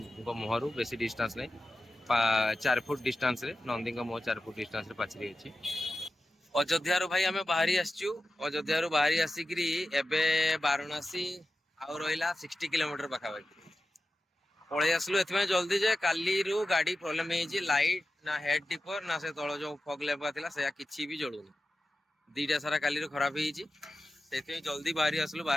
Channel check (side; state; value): both; normal; correlation 0.93